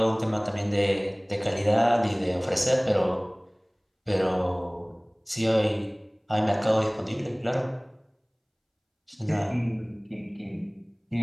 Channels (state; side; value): identical; both; correlation 1.00